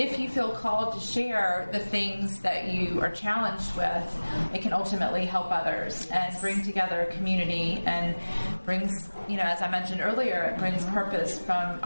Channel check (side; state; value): both; inverted; correlation -1.00